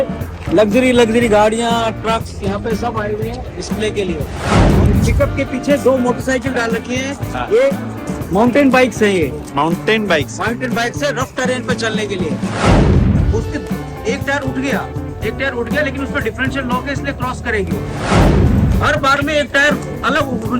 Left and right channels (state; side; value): identical; both; correlation 1.00